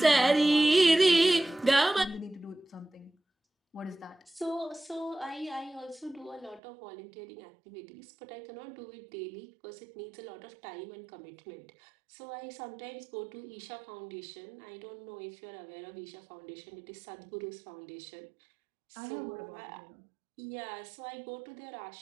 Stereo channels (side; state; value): left; drops out; at 6.6 s